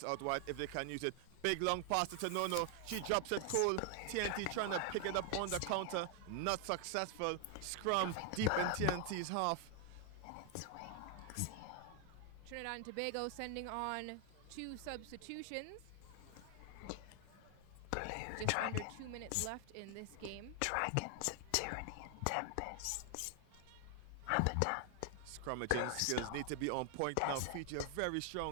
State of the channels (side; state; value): both; different; correlation 0.00